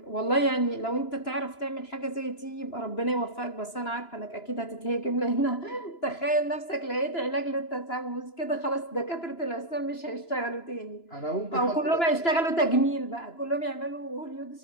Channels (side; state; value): right; late; 2.9 ms